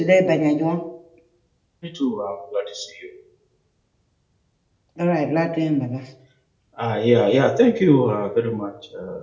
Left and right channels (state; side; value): identical; both; correlation 1.00